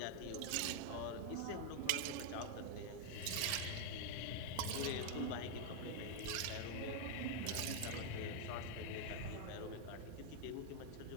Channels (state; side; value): different; both; correlation 0.01